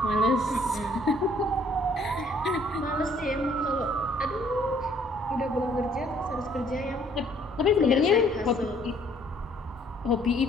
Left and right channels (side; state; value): both; normal; correlation 0.62